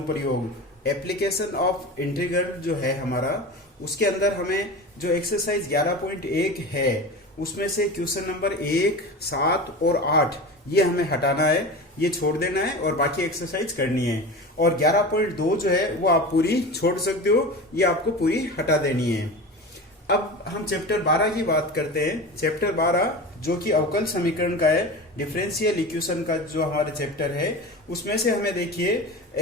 एप्लीकेशन ऑफ इंटीग्रल जो है हमारा, उसके अंदर हमें जो एक्सरसाइज 11.1 है उसमें से क्वेश्चन नंबर 1, 7 और 8 ये हमें हटाना है, ये छोड़ देना है और बाकी एक्सरसाइज करनी है। और 11.2 जो है वो आप पूरी छोड़ सकते हो, ये आपको पूरी हटा देनी है। अब हम चैप्टर 12 की बात करते हैं। चैप्टर 12 जो कि अवकल समीकरण का है, डिफरेंशियल इक्वेशन का जो हमारा चैप्टर है, उसमें से हमें देखिए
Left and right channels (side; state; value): both; normal; correlation 0.30